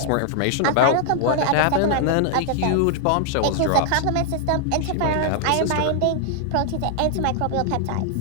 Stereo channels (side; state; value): both; different; correlation 0.00